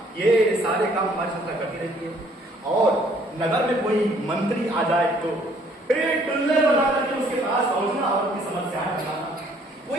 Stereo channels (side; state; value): both; normal; correlation 0.62